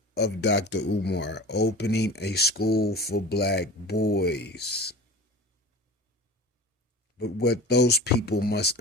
of Dr. Umar opening a school for black boys. But what those people must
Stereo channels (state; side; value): normal; both; correlation 0.36